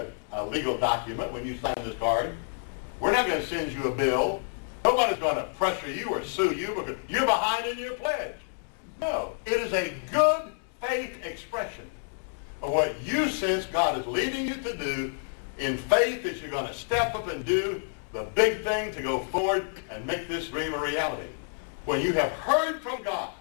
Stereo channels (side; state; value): right; silent; digital silence